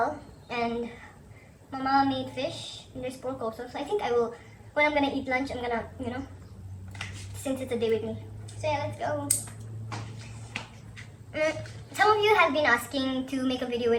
and Mama made fish. And there's pork also. So I think I will, when I'm gonna eat lunch, I'm gonna, since it's a day with me. So yeah, let's go. Some of you have been asking to make a video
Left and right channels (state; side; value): identical; both; correlation 1.00